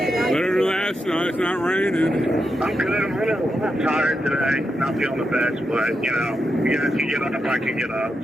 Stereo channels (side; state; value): both; normal; correlation 0.86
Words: than last night. It's not raining. I'm good. I'm a little tired today. Not feeling the best, but, you know, you guys can get up, I can get up,